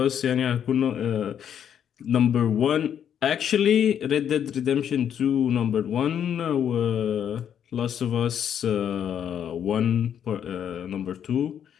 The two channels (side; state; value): right; quieter; 9.0 dB